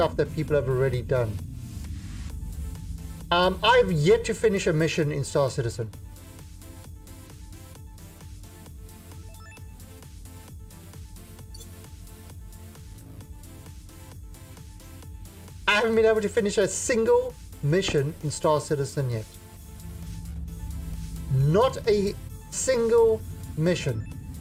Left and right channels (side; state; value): both; identical; correlation 1.00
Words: that people have already done. I've yet to finish a mission in Star Citizen. I haven't been able to finish a single mission in Star Citizen yet. Not a single mission.